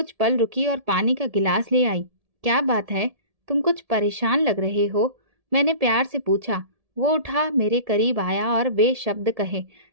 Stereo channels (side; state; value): left; late; 1.7 ms